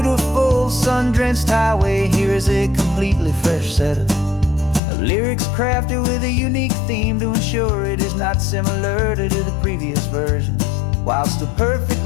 sun-drenched highway, here is a completely fresh set of lyrics crafted with a unique theme to ensure it is not similar to the previous versions, while still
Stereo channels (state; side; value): drops out; right; at 4.8 s